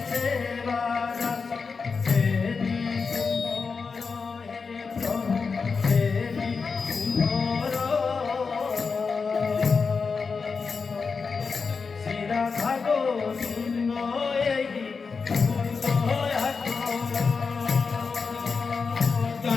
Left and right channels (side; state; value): right; quieter; 5.0 dB